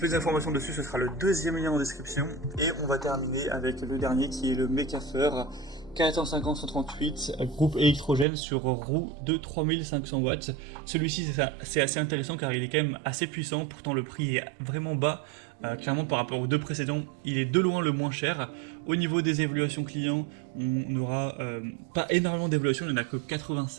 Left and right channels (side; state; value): left; drops out; at 8.2 s